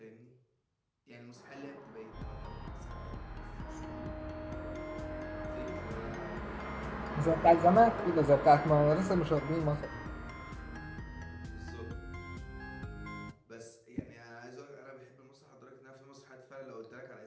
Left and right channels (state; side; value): identical; both; correlation 1.00